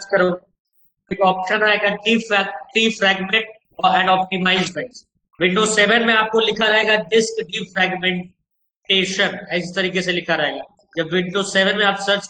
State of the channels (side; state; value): both; identical; correlation 1.00